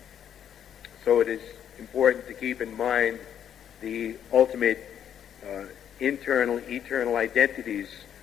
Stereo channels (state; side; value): quieter; right; 9.3 dB